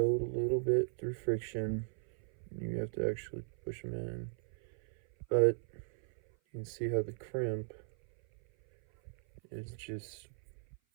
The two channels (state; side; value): silent; left; 53 dB below the other